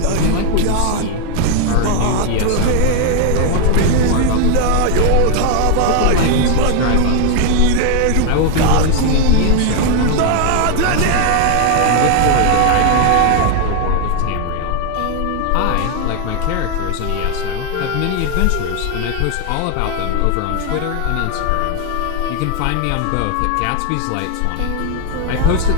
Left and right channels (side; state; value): both; different; correlation 0.01